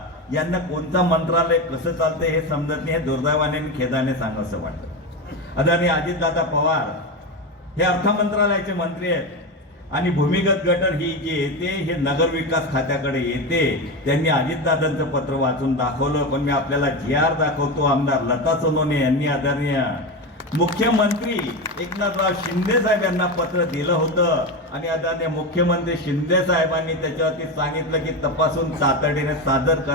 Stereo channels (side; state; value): both; normal; correlation 0.18